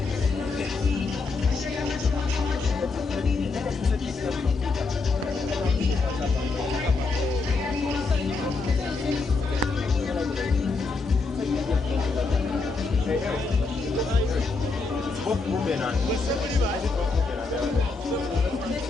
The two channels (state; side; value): quieter; right; 4.0 dB